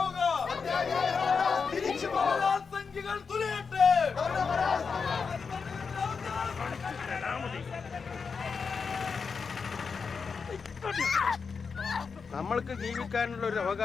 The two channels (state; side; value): quieter; right; 5.4 dB